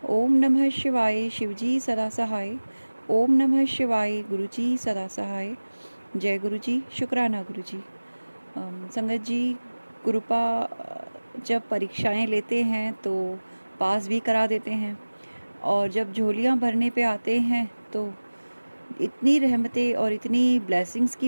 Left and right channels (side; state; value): both; inverted; correlation -1.00